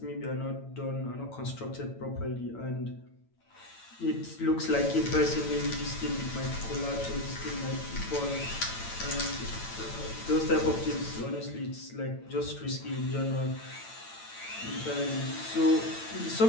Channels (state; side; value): late; right; 8.9 ms